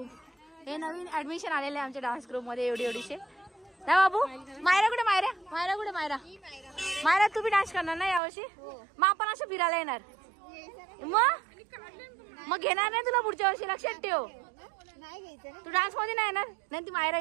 हे नवीन ऍडमिशन आलेले आमच्या डान्स ग्रुप मध्ये एवढीशे. ना बाबू मायरा कुठे मायरा मायरा कुठे मायरा मायरा तू बी डान्स करणार ना यावर्षी. मग आपण असं फिरायला येणार. मग घेणार नाही तुला पुढच्या वर्षी लक्षात ठेव. तू डान्स मध्ये नाही येणार नाही. ती मायरा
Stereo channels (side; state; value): left; drops out; at 8.2 s